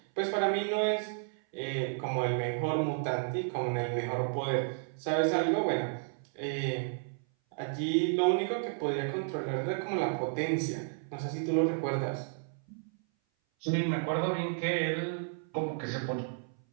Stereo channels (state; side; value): silent; left; 56 dB below the other